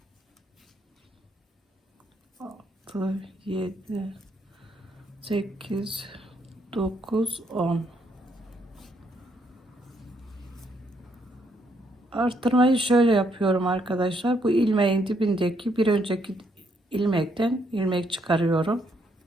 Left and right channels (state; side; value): normal; both; correlation 0.73